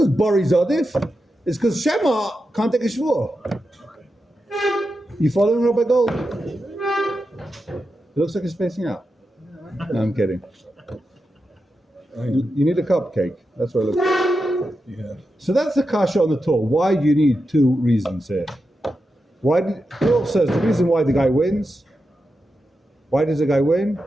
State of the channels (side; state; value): both; normal; correlation 0.89